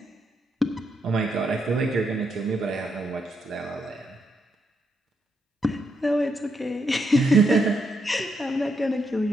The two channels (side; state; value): both; normal; correlation 0.79